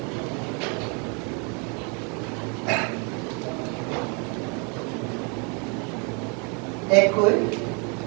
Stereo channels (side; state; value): left; quieter; 34.7 dB